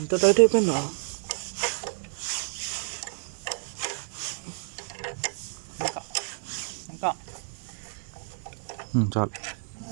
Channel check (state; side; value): silent; left; 58 dB below the other